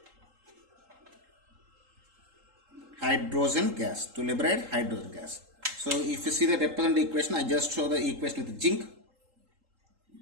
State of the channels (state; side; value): late; left; 3.8 ms